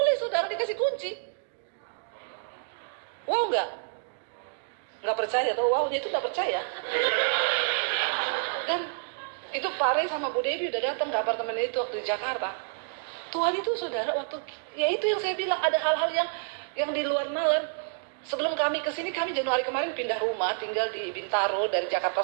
saudara, dikasih kunci. Wow enggak? Enggak percaya atau wownya itu enggak percaya. Dan itu Pak Rey sama Bu Devi udah datang ke apartemen itu waktu di Jakarta. Tuhan itu saudara waktu, ya itu yang saya bilang ada hal-hal yang di luar nalar. Sebelum kami kesini, kami Januari kemarin pindah rumah, tinggal di Bintaro dari Jakarta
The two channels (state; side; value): silent; left; digital silence